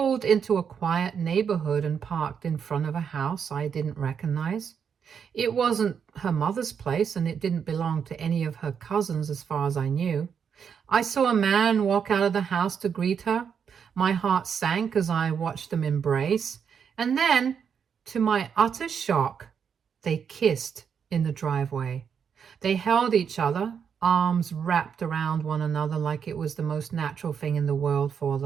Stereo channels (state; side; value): quieter; left; 7.1 dB